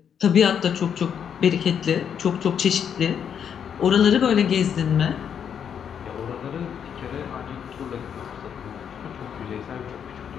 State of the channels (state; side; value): quieter; right; 8.1 dB